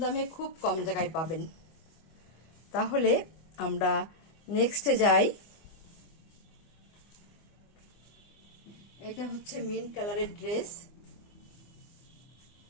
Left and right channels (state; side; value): late; right; 25 ms